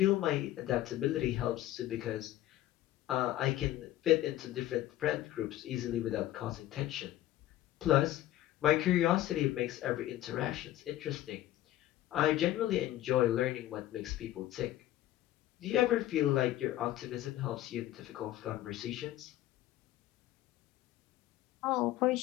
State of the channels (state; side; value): quieter; right; 14.3 dB